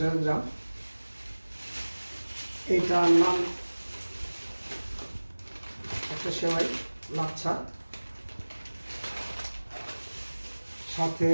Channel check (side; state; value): both; inverted; correlation -1.00